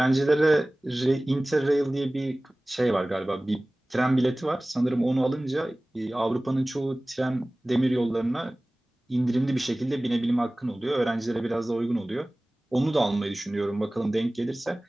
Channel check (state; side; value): normal; both; correlation 0.98